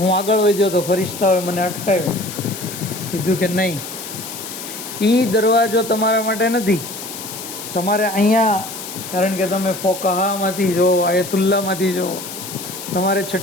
આગળ વધ્યો તો ફરિશ્તાઓએ મને અટકાવ્યો. કીધું કે નહીં, એ દરવાજો તમારા માટે નથી. તમારે અહીંયા, કારણ કે તમે ફોકાહામાંથી જો, આયતુલ્લામાંથી જો, તમારે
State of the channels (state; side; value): noise; left; hiss, 10 dB below the sound